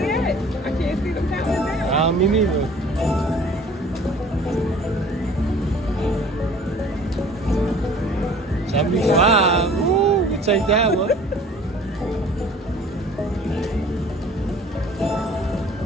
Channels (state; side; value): normal; both; correlation 0.49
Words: at? I can't see them counting down. Me neither. $75. Ooh, we take that one.